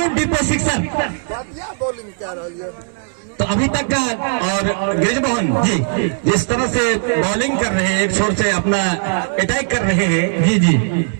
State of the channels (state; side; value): silent; left; 66 dB below the other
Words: डिपो सिक्सर बढ़िया बॉलिंग कर रही है। तो अभी तक का और गिरिजमोहन जी जिस तरह से बॉलिंग कर रहे हैं, एक छोर से अपना अटैक कर रहे हैं जी जी,